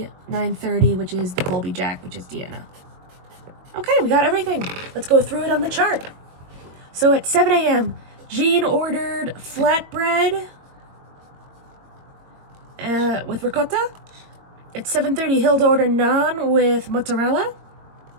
9:30, which is the Colby Jack, which is Deanna. Okay, we got everything. Let's go through it on the chart. So at 7 a.m., Jean ordered flatbread with ricotta. At 7:30, Hilda ordered naan with mozzarella.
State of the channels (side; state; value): left; late; 21 ms